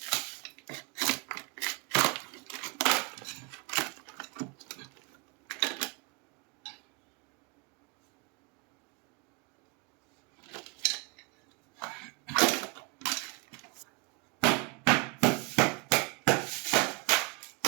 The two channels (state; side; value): quieter; left; 30.0 dB